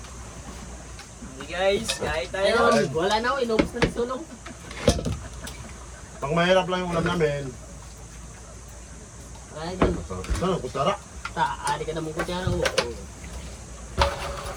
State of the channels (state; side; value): identical; both; correlation 1.00